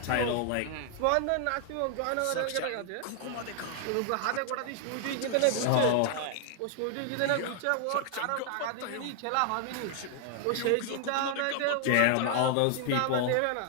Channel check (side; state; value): both; different; correlation 0.00